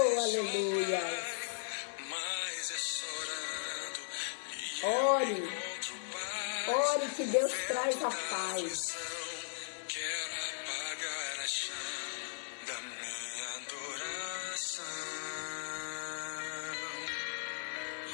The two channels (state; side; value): silent; right; 53 dB below the other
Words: aleluia. Ore, ore que Deus traz a paz. Quero apagar a chama da minha adoração.